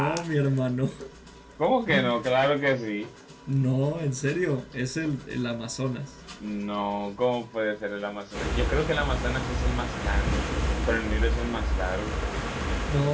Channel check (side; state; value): both; identical; correlation 1.00